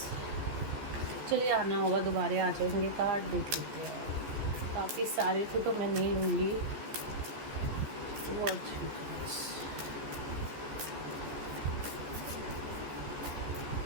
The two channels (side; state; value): left; late; 14 ms